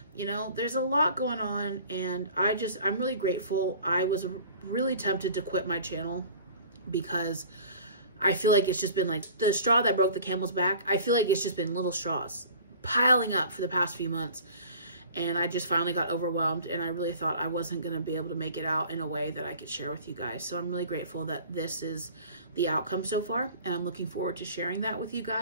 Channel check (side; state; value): both; inverted; correlation -0.45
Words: You know, there's a lot going on, and I'm really grateful. I was really tempted to quit my channel because I feel like it's just been like the straw that broke the camel's back. I feel like it's just been little straws piling up for the past few months. And I just finally got overwhelmed, and I really thought I wasn't going to be able to make it out in a way that I could share with you guys. So I'm really grateful that this is the outcome so far, and I'm looking forward to sharing that with you